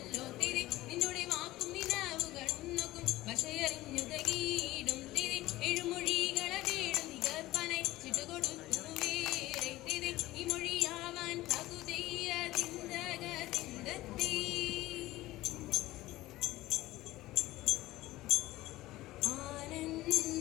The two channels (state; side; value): quieter; right; 17.3 dB